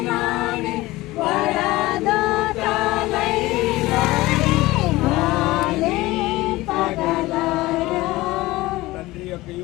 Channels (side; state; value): right; quieter; 19.2 dB